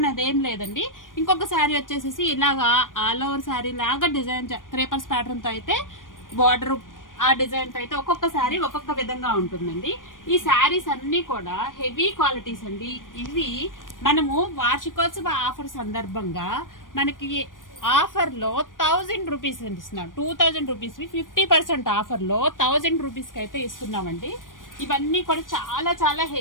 అదేం లేదండి. ఇంకొక శారీ వచ్చేసి ఇలాగా ఆల్ ఓవర్ శారీ లాగా డిజైన్ క్రేపర్స్ ప్యాటర్న్ తో అయితే బార్డర్ ఆ డిజైన్ తో అయితే ఒక్కొక్క శారీ ఒక్కొక్క విధంగా ఉంటుందండి. ఈ శారీస్ అన్ని కూడా హెవీ క్వాలిటీస్ అండి. ఇవి మనము వార్షికోత్సవ ఆఫర్ సందర్భంగా మనకి ఆఫర్ లో 1000 రూపీస్ ఇస్తున్నాం. 2000 రూపీస్ 50% ఆఫర్ లో 1000 రూపీస్ కి అయితే ఇస్తున్నామండి. ఇవన్నీ కూడా చాలా చాలా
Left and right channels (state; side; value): late; right; 0.89 ms